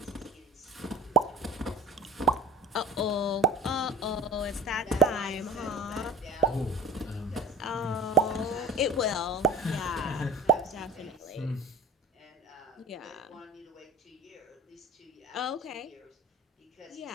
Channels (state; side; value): normal; both; correlation 0.40